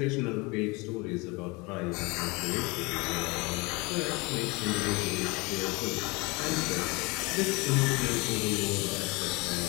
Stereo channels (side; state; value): right; quieter; 26.1 dB